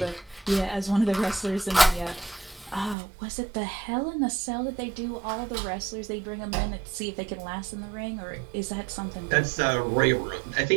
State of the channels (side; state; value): left; drops out; at 3.0 s